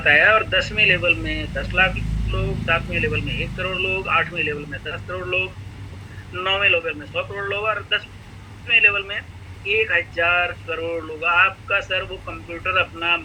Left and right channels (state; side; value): identical; both; correlation 1.00